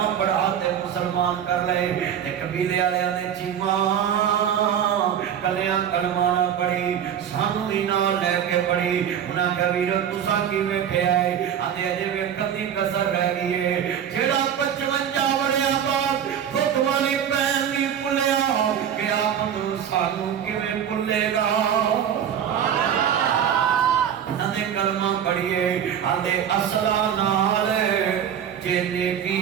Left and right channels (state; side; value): quieter; left; 8.9 dB